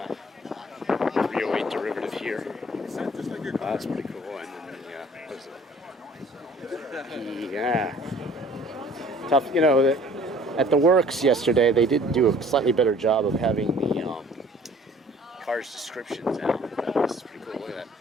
308 derivative here. That's pretty cool. And then what is it? Yeah. Tough, at the works yesterday, they did do a slightly better job of having the car's descriptions out. This is pretty cool. Look at that.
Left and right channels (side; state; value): both; normal; correlation 0.53